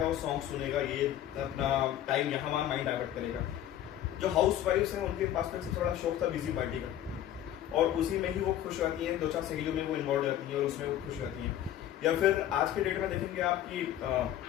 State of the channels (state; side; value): quieter; right; 11.8 dB